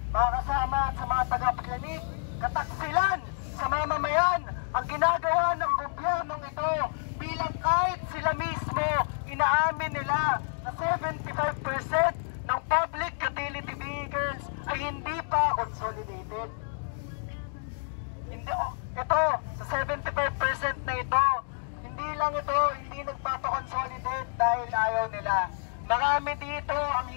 Mga kasama at sa mga tagapakinig, kataksilan sa mamamayan ang ginagawa ng gobyernong ito bilang kahit sila mismo inaamin nila na 75% ng public utility vehicles ay hindi pa consolidated. Ito, sa 75% na ito, hindi lang ito, hindi nagpapakonsolidate dahil ayaw nila. Marami dito ang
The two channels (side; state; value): right; silent; digital silence